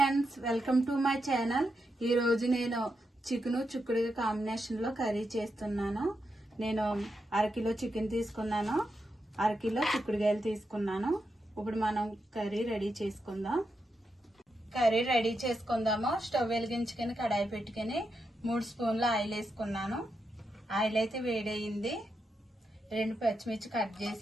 welcome to my channel. ఈ రోజు నేను చికెన్ చిక్కుడుగా కాంబినేషన్ లో కర్రీ చేస్తున్నాను. నేను అరకిలో చికెన్ తీసుకున్నాను, అరకిలో చిక్కుడుగాయలు తీసుకున్నాను. ఇప్పుడు మనం కర్రీ రెడీ చేసుకుందాం. స్టవ్ వెలిగించుకొని కడాయి పెట్టుకుని 3 స్పూన్ల ఆయిల్ వేసుకున్నాను. ఆయిల్ అయితే వేడయింది. 2 పచ్చిమిర్చి కట్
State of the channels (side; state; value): both; normal; correlation 0.85